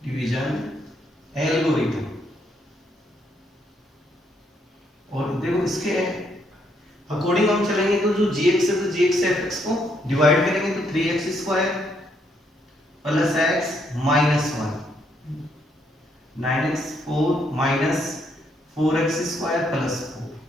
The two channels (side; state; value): both; normal; correlation 0.73